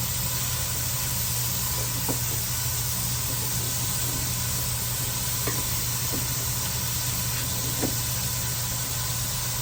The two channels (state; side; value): identical; both; correlation 1.00